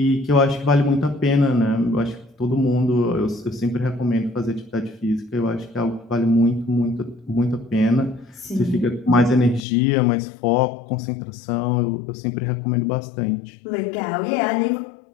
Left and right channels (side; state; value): right; drops out; at 9.7 s